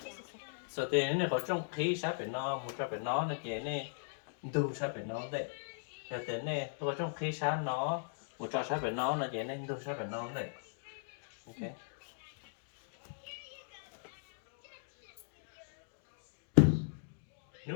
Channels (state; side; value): silent; right; digital silence